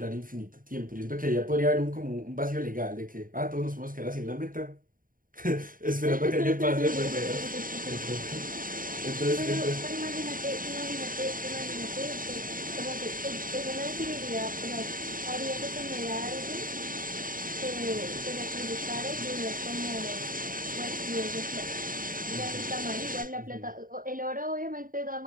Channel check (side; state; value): left; late; 0.40 ms